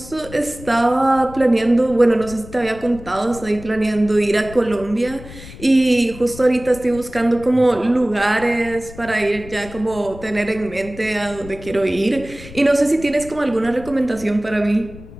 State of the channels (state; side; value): noise; left; rumble, 16 dB below the sound